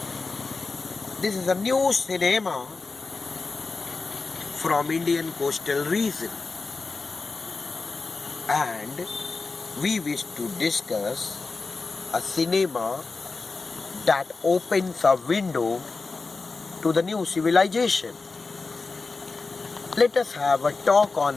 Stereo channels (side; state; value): right; quieter; 4.1 dB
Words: This is a new cinema from Indian coastal region, and we wish to discuss a cinema that opens a window to the new civilization. Let us have a talk